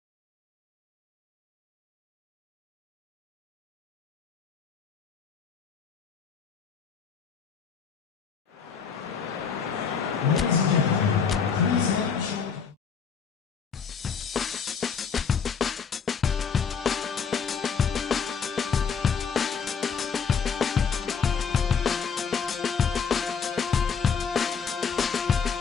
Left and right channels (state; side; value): quieter; right; 6.3 dB